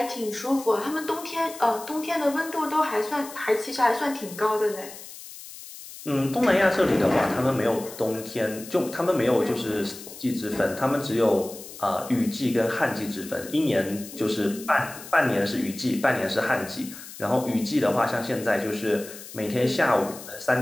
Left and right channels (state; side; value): noise; left; hiss, 14 dB below the sound